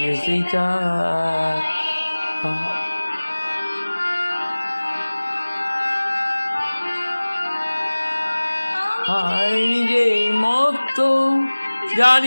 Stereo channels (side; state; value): both; inverted; correlation -1.00